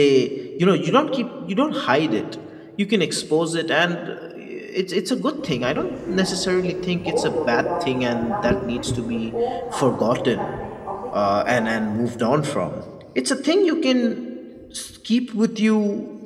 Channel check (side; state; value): both; identical; correlation 1.00